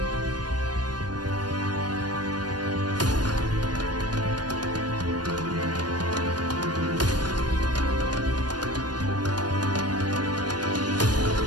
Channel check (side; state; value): left; late; 0.69 ms